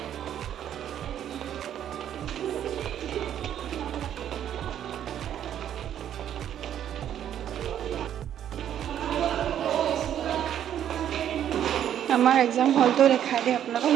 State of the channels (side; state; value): left; quieter; 10.3 dB